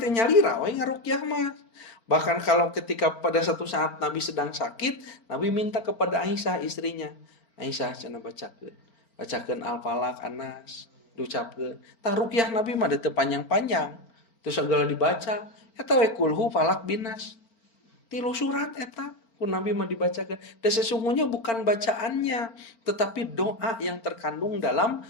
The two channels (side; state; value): right; late; 4.4 ms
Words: nyalira we ngaruqyah mah. Bahkan kalau ketika pada satu saat Nabi sedang sakit, Nabi minta kepada Aisyah istrinya. Aisyah cenah bacakeun Al-Falaq, An-Nas, diucapkeun. Tah ruqyah Nabi mah teu panjang-panjang. Terus segala dibaca, eta we kulhu falaq binas. 3 surat eta ku Nabi mah dibacakeun. Dan sesungguhnya bukan bacaannya, tetapi doa yang terkandung dalam